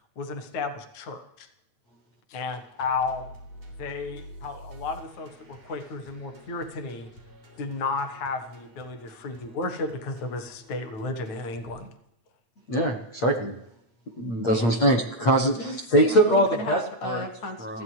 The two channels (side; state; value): right; late; 8.6 ms